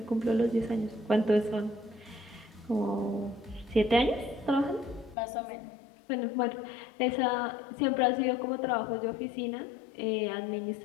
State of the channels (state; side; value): drops out; right; at 5.2 s